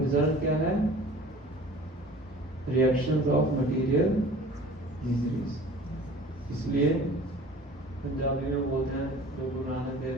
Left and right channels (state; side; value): normal; both; correlation 0.45